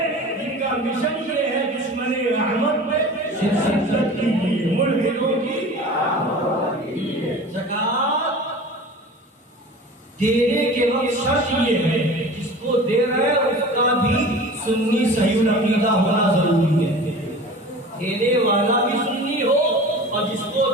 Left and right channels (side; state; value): both; normal; correlation 0.38